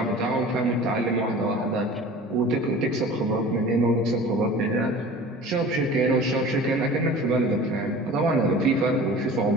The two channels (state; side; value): normal; both; correlation 0.41